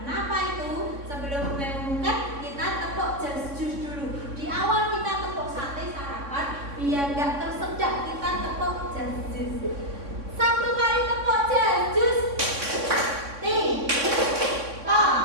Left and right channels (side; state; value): left; late; 3.6 ms